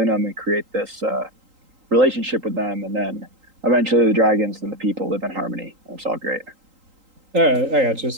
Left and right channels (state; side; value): late; left; 3.8 ms